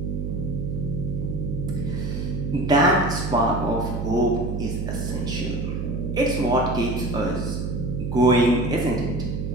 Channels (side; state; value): right; noise; hum, 3 dB below the sound